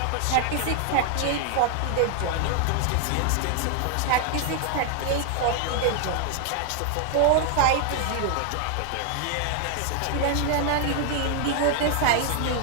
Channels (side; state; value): both; different; correlation 0.00